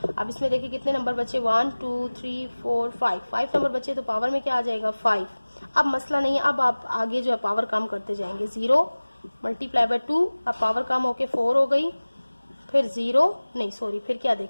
अब इसमें देखिए कितने नंबर बचे 1 2 3 4 5 नंबर बचे, तो पावर में क्या आ जाएगा 5। अब मसला नहीं है, अब आप आगे जो है पावर कम करते जाएंगे। 0 मल्टीप्लाई बाय 2, अब पावर कम होके 4 हो गई, फिर 0 नहीं सॉरी फिर क्या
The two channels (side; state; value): both; inverted; correlation -1.00